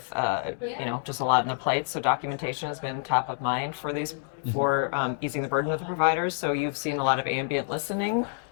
just a lot on the plate. So documentation has been top of mind for easing the burden of the providers. So you've seen a lot of ambient listening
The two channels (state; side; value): silent; right; digital silence